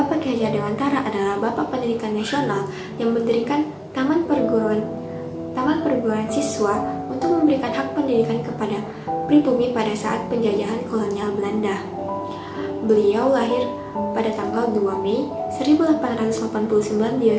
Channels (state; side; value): identical; both; correlation 1.00